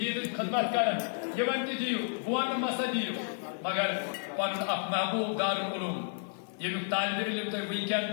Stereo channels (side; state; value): right; silent; 57 dB below the other